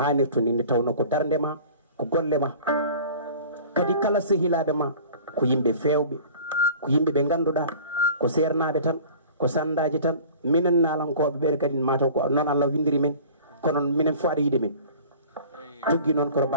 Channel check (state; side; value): inverted; both; correlation -0.44